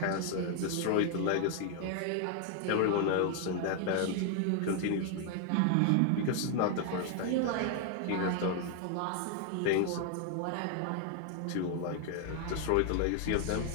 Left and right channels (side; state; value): both; different; correlation 0.00